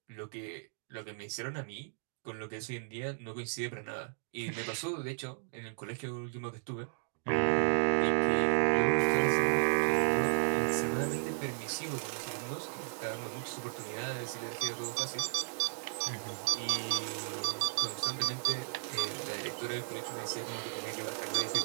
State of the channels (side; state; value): left; silent; digital silence